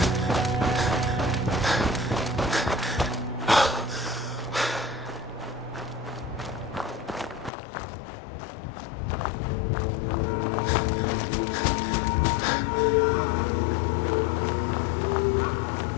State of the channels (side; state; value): right; drops out; at 7.5 s